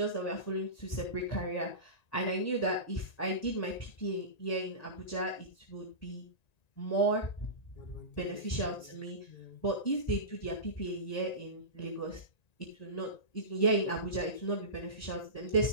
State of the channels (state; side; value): late; right; 1.9 ms